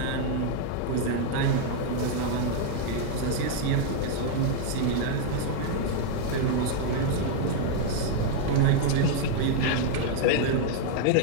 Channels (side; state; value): both; different; correlation 0.00